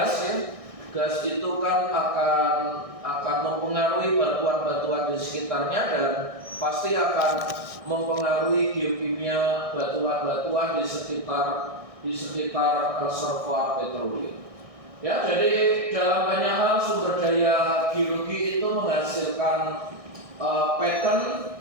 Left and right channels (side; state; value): left; late; 1.6 ms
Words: ya. Gas itu kan akan mempengaruhi batuan-batuan di sekitarnya dan pasti akan mempengaruhi geokimia batuan-batuan di sekitar reservoir petroleum. Ya, jadi dalam banyak hal sumber daya geologi itu menghasilkan pattern